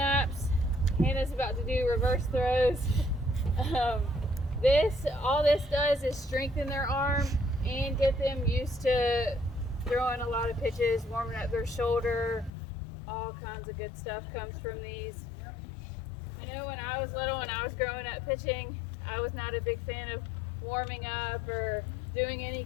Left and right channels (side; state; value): right; drops out; at 12.5 s